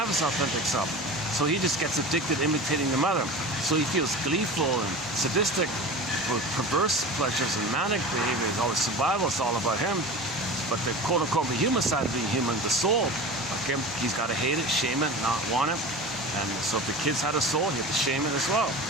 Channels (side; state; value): both; normal; correlation 0.33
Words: his authentic self. So he just gets addicted imitating the mother. So he feels gleeful and sadistic with perverse pleasures and manic behavior. It's always survival. It's all about him. But the quote-unquote the human side of being human, the soul, okay, he's got to hate it, shame it, not want it. And so if the kids had a soul, he had to shame it as well.